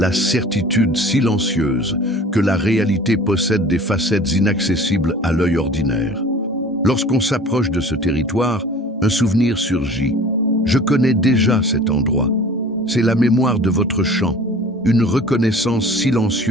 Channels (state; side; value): normal; both; correlation 0.44